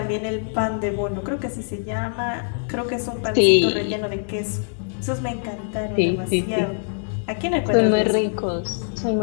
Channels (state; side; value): silent; right; 63 dB below the other